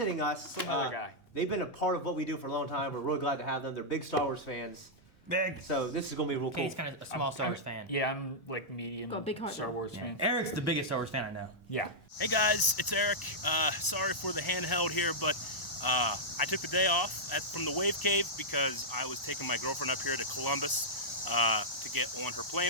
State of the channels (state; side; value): late; right; 1.0 ms